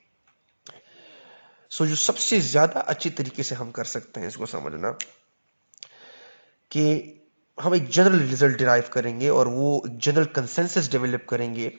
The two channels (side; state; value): both; inverted; correlation -1.00